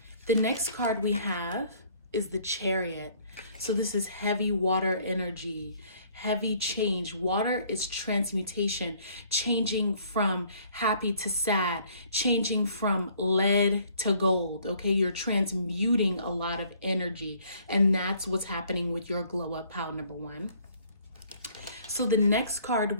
The next card we have is the Chariot. So this is heavy water energy, heavy change. Water is transmutation, changing from happy to sad, changing from lead to gold, okay? You're transmuting a lot of energy, and that's what's happening with your glow up pile number one. So the next card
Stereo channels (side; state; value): both; inverted; correlation -0.60